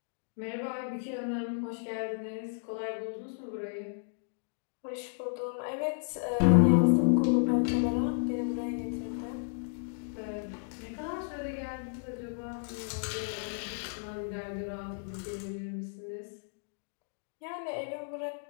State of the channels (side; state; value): right; silent; digital silence